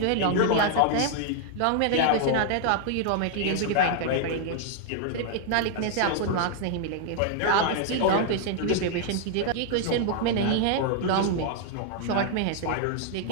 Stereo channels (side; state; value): both; different; correlation 0.00